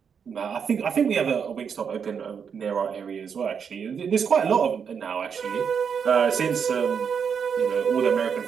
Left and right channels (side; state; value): left; quieter; 6.8 dB